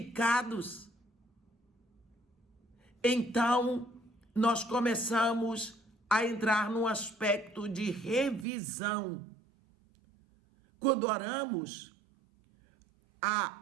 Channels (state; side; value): drops out; left; at 8.5 s